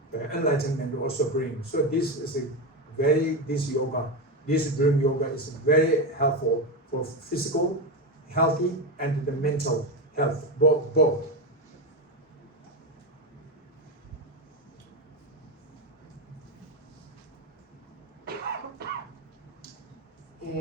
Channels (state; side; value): normal; both; correlation 0.13